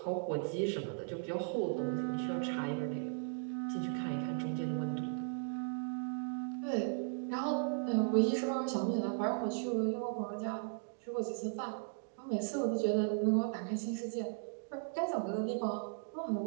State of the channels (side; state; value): left; silent; digital silence